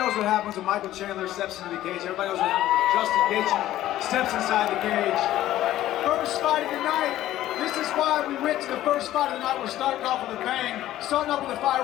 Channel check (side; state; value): right; quieter; 13.9 dB